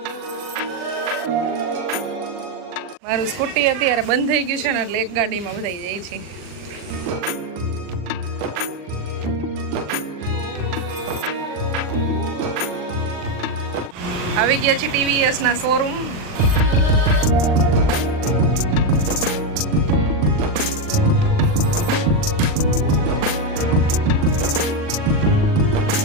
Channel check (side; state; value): left; late; 40 ms